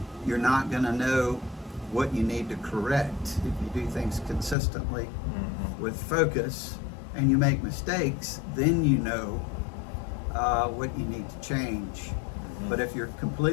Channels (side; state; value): right; drops out; at 4.5 s